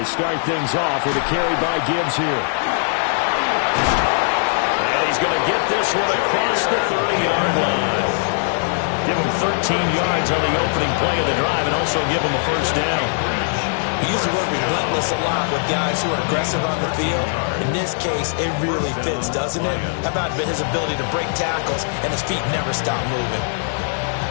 start things off with a carry by Gibbs here. And he's going to get this one across the 30-yard line. Give him 13 yards on the opening play of the drive and also give him a 1st down. He used to work relentless a lot with guys who are aggressive on the field. In this case, it really fits, doesn't it? How about his ability to break tackles and his feet never stop moving?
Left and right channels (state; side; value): silent; right; digital silence